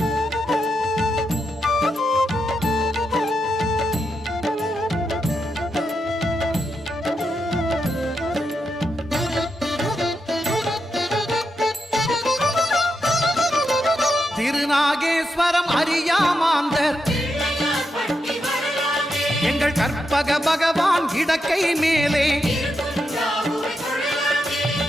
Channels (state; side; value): normal; both; correlation 0.84